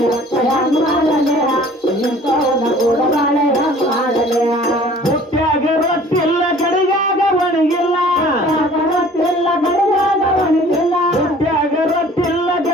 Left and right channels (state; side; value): normal; both; correlation 0.50